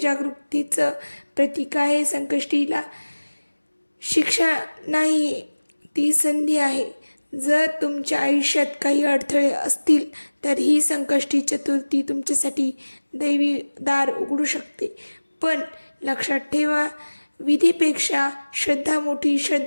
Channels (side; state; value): both; inverted; correlation -1.00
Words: प्रतीक आहे. संकष्टीला शिक्षा नाही, ती संधी आहे. जर तुमच्या आयुष्यात काही अडथळे असतील तर ही संकष्टी चतुर्थी तुमच्यासाठी दैवी दार उघडू शकते. पण लक्षात ठेवा, विधीपेक्षा श्रद्धा मोठी,